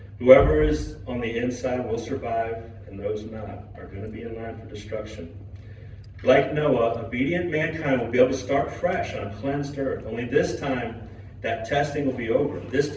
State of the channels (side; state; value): both; identical; correlation 1.00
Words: Whoever is on the inside will survive, and those not are going to be in line for destruction. Like Noah, obedient mankind will be able to start fresh on a cleansed earth. Only this time, that testing will be over. This